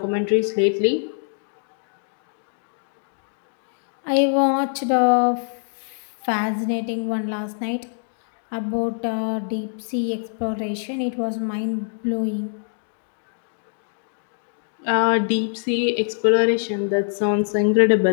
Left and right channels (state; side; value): silent; right; digital silence